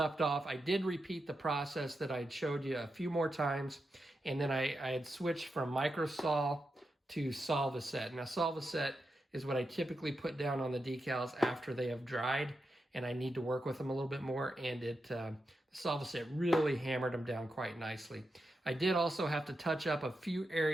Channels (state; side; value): normal; both; correlation 0.88